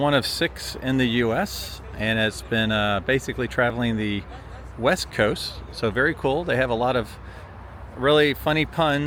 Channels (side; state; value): both; identical; correlation 1.00